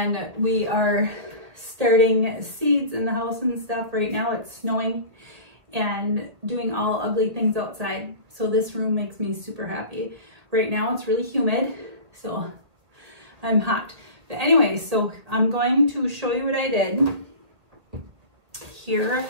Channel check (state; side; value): late; left; 1.8 ms